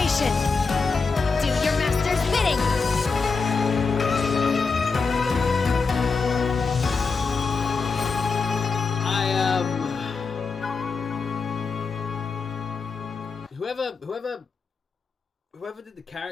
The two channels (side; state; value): right; quieter; 4.7 dB